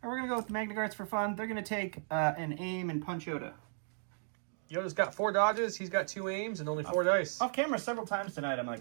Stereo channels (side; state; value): left; silent; digital silence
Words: All right, we're going to go with the Magna Guards for fun. They're going to take an aim and punch Yoda. Yoda's got 4 dodges, he's got 2 aims, and only 4 dice. Off camera several times tonight, I'm